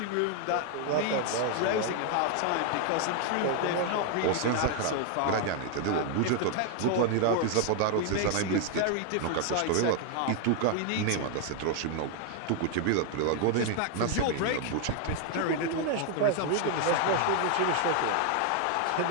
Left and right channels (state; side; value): different; both; correlation 0.00